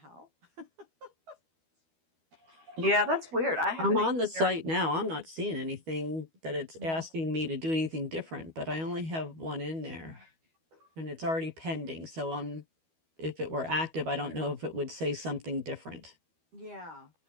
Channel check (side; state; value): left; late; 12 ms